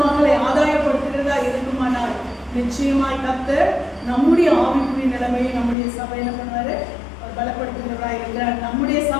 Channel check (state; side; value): drops out; right; at 5.8 s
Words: ஆதாயப்படுத்துகிறதா இருக்குமானால் நிச்சயமாய் கர்த்தர் நம்முடைய ஆவிக்குரிய நிலைமையை நம்முடைய சபை என்ன பண்ணுவாரு? அவர் பலப்படுத்துகிறவராய் இருக்கிறார். நம்முடைய